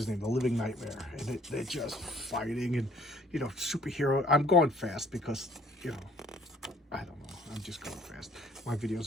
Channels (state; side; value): normal; both; correlation 0.59